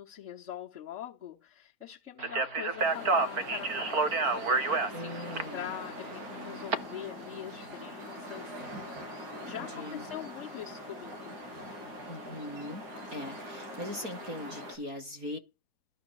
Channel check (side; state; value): left; late; 4.3 ms